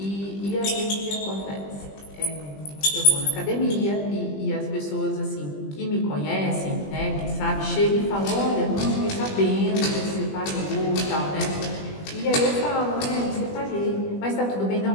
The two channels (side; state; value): right; late; 20 ms